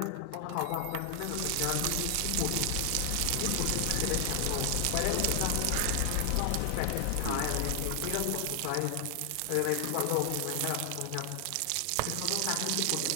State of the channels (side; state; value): both; different; correlation 0.00